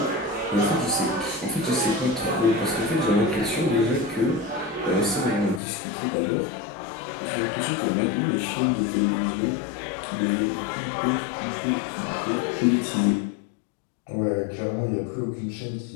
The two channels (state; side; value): drops out; right; at 5.6 s